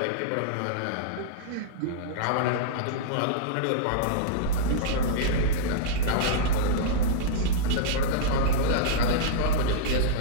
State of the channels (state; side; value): different; both; correlation -0.03